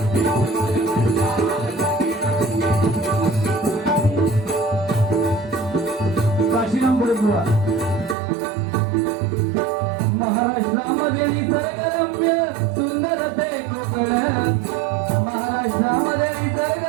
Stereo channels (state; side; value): drops out; left; at 8.2 s